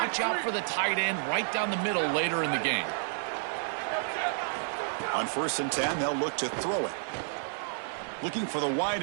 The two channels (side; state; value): left; silent; 58 dB below the other